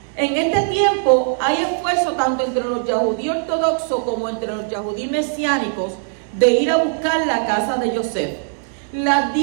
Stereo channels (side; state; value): left; silent; digital silence